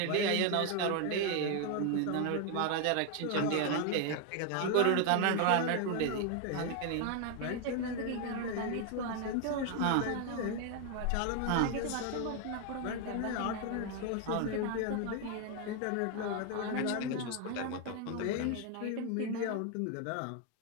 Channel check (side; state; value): both; different; correlation 0.01